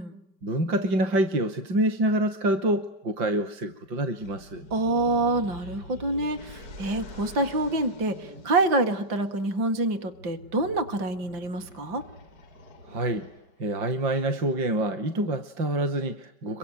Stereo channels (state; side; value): late; left; 5.2 ms